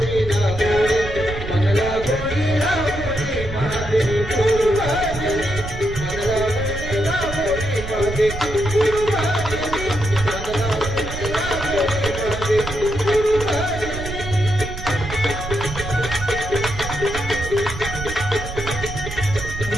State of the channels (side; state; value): right; noise; rumble, 8 dB below the sound